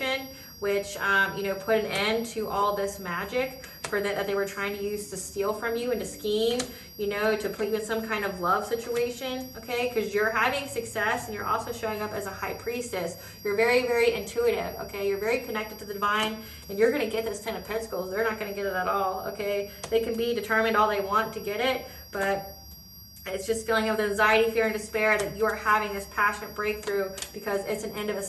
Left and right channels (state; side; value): identical; both; correlation 1.00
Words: which, put an end to all this magic that they were trying to use to steal from you and to scheme, to put you in some kind of love situation, okay? Because you're having success and you're also showing up as a high priestess. You're very, very intuitive, okay? You're very connected to the divine, and you're going to get this 10 of Pentacles. They're not going to get it at all, okay? They can be determined all they want to get it, but it's just feeling of anxiety, fear, and despair that you are having this passionate breakthrough because it's an end of a